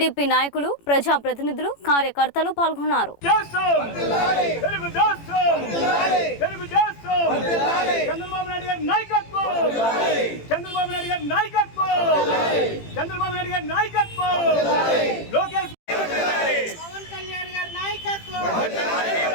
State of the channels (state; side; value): late; right; 18 ms